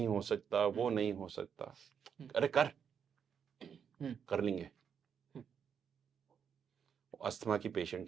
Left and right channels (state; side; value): quieter; left; 7.4 dB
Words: हो सकता, वो नहीं हो सकता, अरे कर लेंगे। अस्थमा की पेशेंट